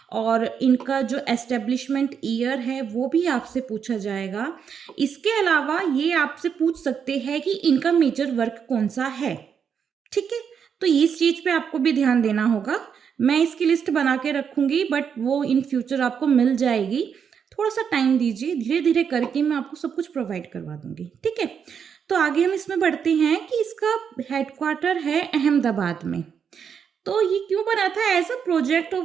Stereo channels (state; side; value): quieter; left; 7.2 dB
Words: और इनका जो एस्टेब्लिशमेंट ईयर है वो भी आपसे पूछा जाएगा। इसके अलावा ये आपसे पूछ सकते हैं कि इनका मेजर वर्क कौन सा है। ठीक है? तो इस चीज़ पे आपको भी ध्यान देना होगा। मैं इसकी लिस्ट बना के रखूँगी, बट वो इन फ्यूचर आपको मिल जाएगी। थोड़ा-सा टाइम दीजिए, धीरे-धीरे करके मैं आपको सब कुछ प्रोवाइड करवा दूँगी, ठीक है? तो आगे हम इसमें बढ़ते हैं कि इसका हेडक्वार्टर है अहमदाबाद में। तो ये क्यों बना था? As a project of